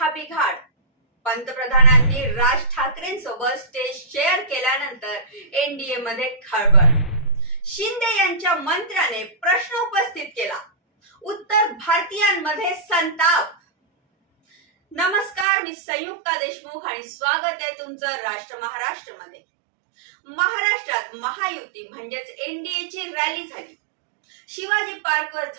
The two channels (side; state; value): left; drops out; at 15.5 s